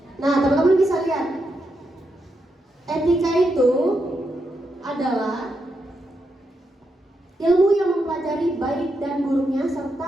Nah, teman-teman bisa lihat, etika itu adalah ilmu yang mempelajari baik dan buruknya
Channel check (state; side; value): normal; both; correlation 0.83